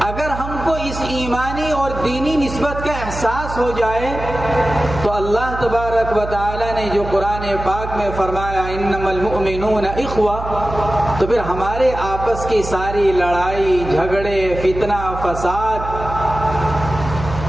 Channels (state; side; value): noise; right; hum, 8 dB below the sound